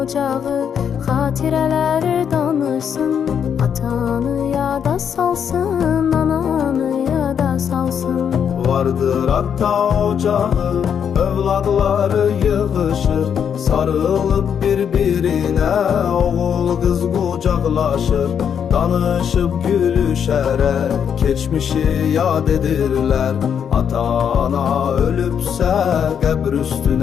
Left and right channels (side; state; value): right; quieter; 7.9 dB